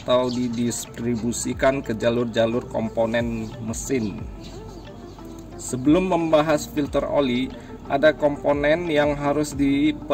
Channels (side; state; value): both; identical; correlation 1.00